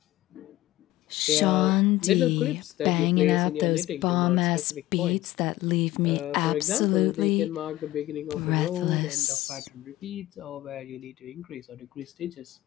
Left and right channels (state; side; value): quieter; right; 16.4 dB